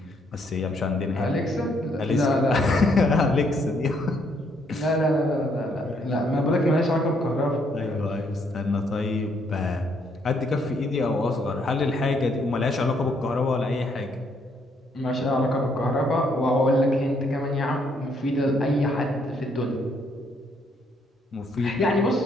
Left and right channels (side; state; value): both; normal; correlation 0.71